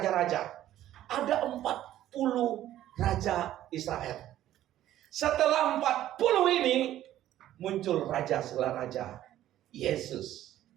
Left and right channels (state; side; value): quieter; left; 13.0 dB